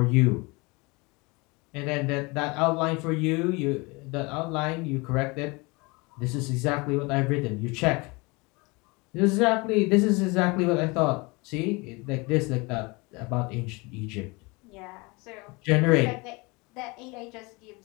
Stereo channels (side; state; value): right; quieter; 26.4 dB